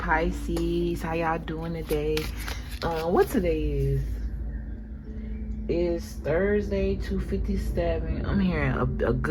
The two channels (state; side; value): identical; both; correlation 1.00